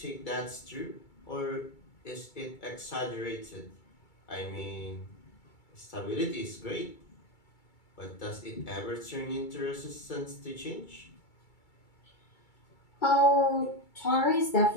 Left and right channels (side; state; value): right; late; 2.3 ms